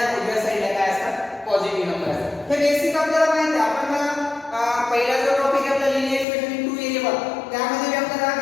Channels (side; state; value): right; drops out; at 6.2 s